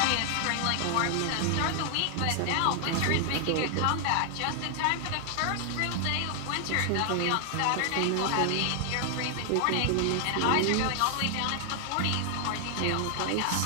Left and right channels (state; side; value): different; both; correlation 0.00